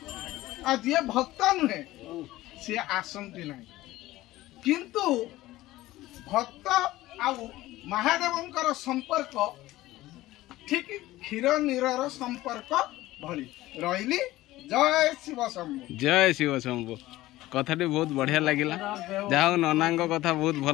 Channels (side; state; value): right; quieter; 16.8 dB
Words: जी भक्त नुहे सी आसती ना किंतु भक्त आउ महादेवकर संपर्क ठीक क्षीर नीरर संपर्क भली रही। जय शिव शंभु। जय शिव शंभु कथा बहुत बढ़िया लगिला जाओ नना कथा बहुत